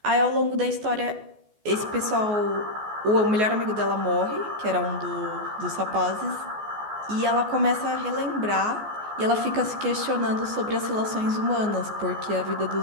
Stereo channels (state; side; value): late; left; 14 ms